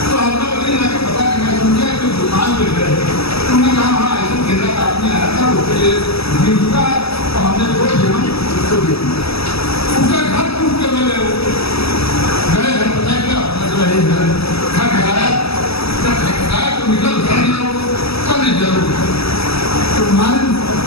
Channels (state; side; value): late; right; 0.77 ms